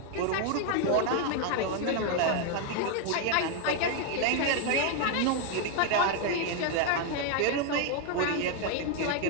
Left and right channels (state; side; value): different; both; correlation 0.01